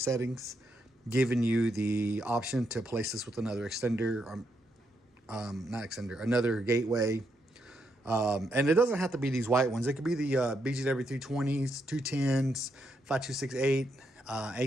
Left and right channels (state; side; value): normal; both; correlation 0.79